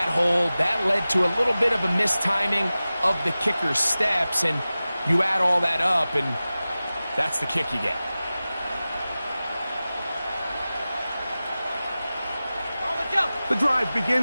hold. That led to a little bit of a mistiming of the kicker's steps. And you add all that up, and that's the kick you get. The drive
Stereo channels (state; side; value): inverted; both; correlation -0.96